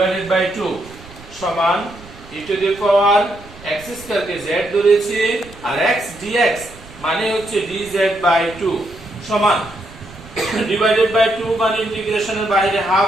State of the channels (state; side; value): noise; right; rumble, 20 dB below the sound